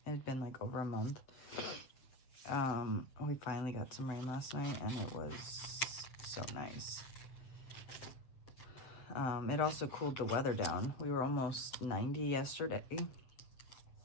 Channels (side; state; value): right; late; 8.0 ms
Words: It had been like over a month. We finally got some rain last night and it was so nice. It also cooled the weather down. We were almost 90 yesterday.